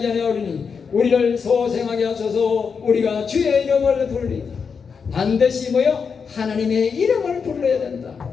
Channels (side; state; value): right; quieter; 5.9 dB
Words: 아니하오리니 우리를 소생하게 하소서. 우리가 주의 이름을 부르리다. 반드시 뭐요? 하나님의 이름을 불러야 된다.